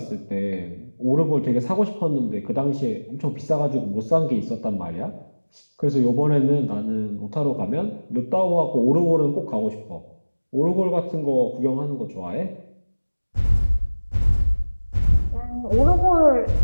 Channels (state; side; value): inverted; both; correlation -1.00